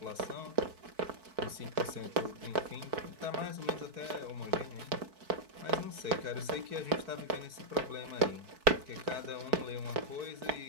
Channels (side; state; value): left; late; 4.5 ms